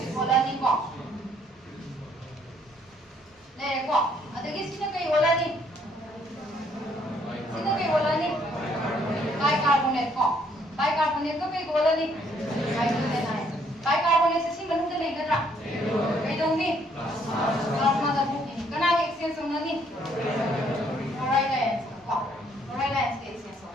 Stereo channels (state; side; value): normal; both; correlation 0.66